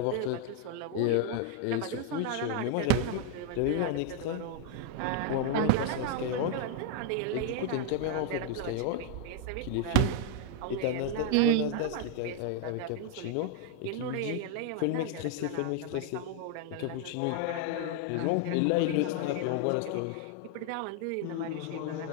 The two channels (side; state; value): both; different; correlation 0.00